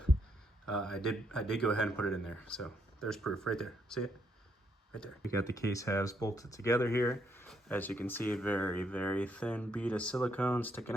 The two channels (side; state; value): both; normal; correlation 0.75